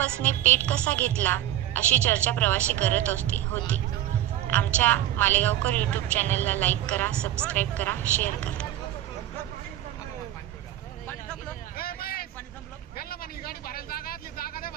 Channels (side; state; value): left; quieter; 12.9 dB